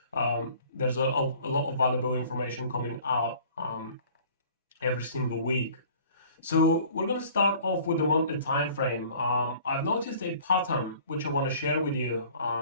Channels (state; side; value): inverted; both; correlation -0.50